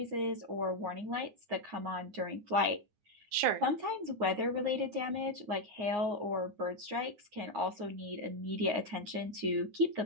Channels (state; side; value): late; left; 9.6 ms